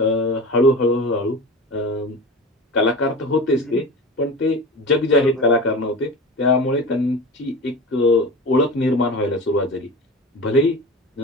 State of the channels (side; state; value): both; normal; correlation 0.31